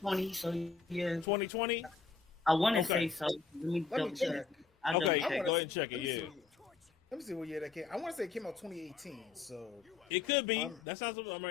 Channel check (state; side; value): quieter; right; 5.0 dB